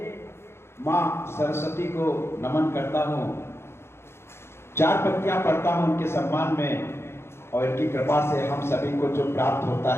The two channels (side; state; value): right; late; 0.12 ms